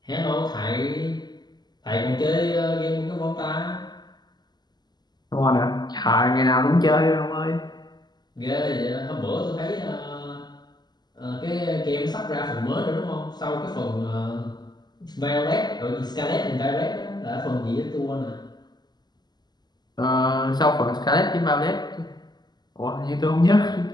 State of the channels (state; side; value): late; right; 0.20 ms